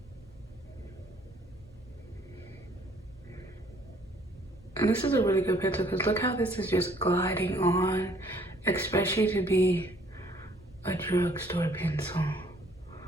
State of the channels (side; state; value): both; normal; correlation 0.60